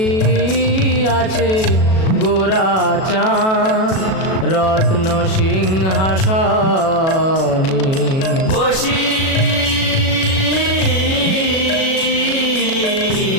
আছে গোরা চাঁদ রত্ন সিংহাসনে, বসি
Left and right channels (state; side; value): late; right; 37 ms